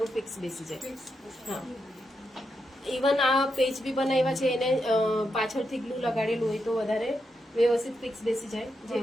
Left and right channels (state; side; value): normal; both; correlation 0.84